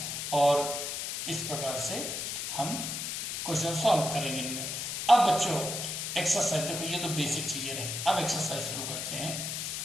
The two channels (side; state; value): left; noise; hiss, 3 dB below the sound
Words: और इस प्रकार से हम क्वेश्चन सॉल्व करेंगे इनमें. अब बच्चों एक्सरसाइज देखो, ये तो बेसिक चीजें रहे। अब एक्सरसाइज शुरू करते हैं।